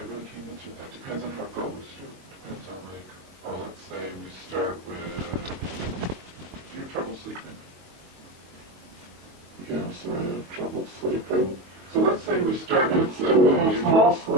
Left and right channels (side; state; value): left; late; 22 ms